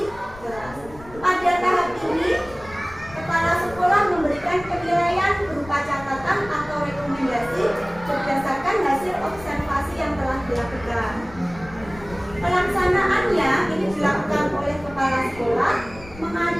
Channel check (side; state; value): left; noise; rumble, 18 dB below the sound